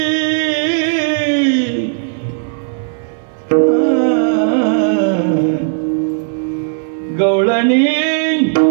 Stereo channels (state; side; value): silent; left; digital silence